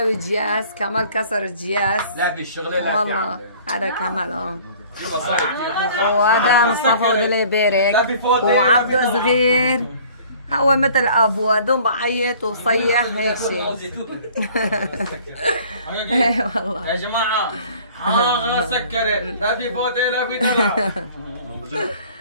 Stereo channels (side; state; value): both; inverted; correlation -0.51